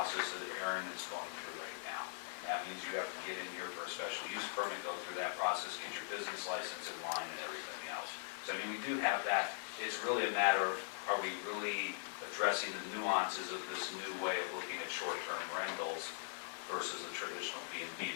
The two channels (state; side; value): silent; right; 50 dB below the other